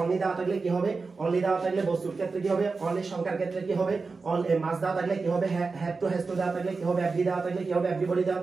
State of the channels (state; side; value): quieter; left; 4.3 dB